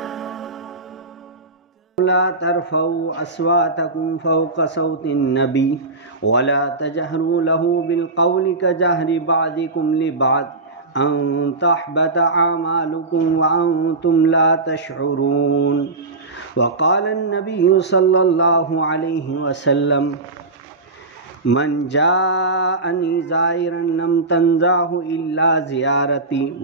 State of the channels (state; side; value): quieter; left; 3.3 dB